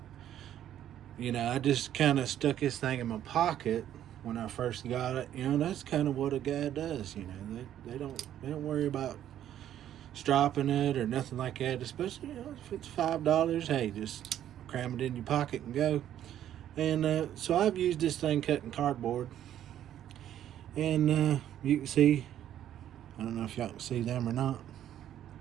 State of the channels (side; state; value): left; quieter; 11.1 dB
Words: you know, I just kind of stuck this thing in my pocket when I first got it. You know, that's kind of what a guy does. You know, they don't worry about stropping it or nothing like that. Especially, you know, if it's $5, hey, just cram it in your pocket and go. And so I've used this thing cutting cardboard. And you can see, I don't know if y'all can see them or not,